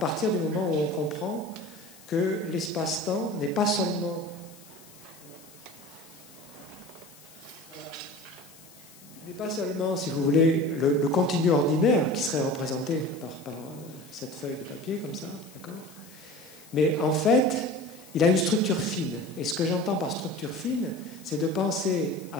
du moment où on comprend que l'espace-temps n'est pas seulement n'est pas seulement, si vous voulez, le continu ordinaire qui serait représenté par cette feuille de papier, comme ça, d'accord? Mais en fait, il a une structure fine. Et ce que j'entends par structure fine, c'est de penser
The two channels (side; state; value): left; noise; hiss, 22 dB below the sound